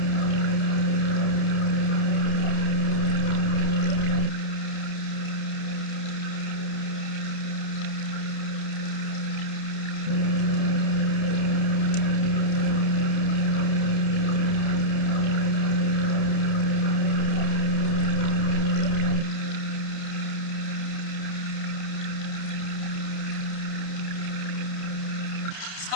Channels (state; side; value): late; right; 30 ms